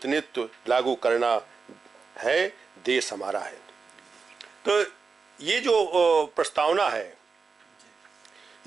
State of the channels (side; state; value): left; quieter; 4.9 dB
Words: लागू करना है। देश हमारा है। तो ये जो प्रस्तावना है